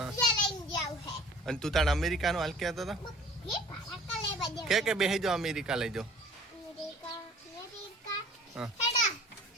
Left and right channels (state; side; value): normal; both; correlation 0.49